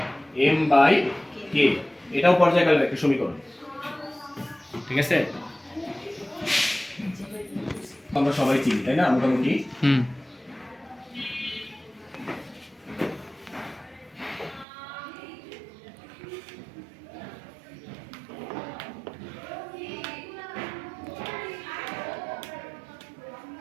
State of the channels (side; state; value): left; drops out; at 14.7 s